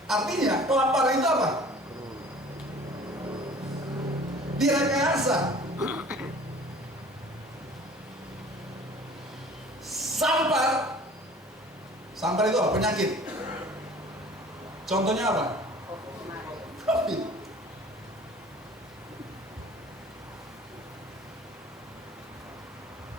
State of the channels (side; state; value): both; normal; correlation 0.47